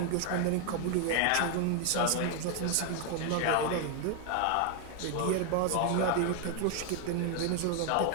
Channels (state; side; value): different; both; correlation 0.00